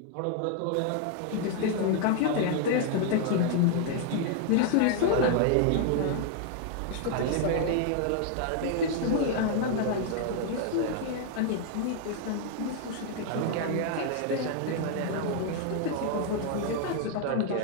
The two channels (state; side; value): different; both; correlation 0.00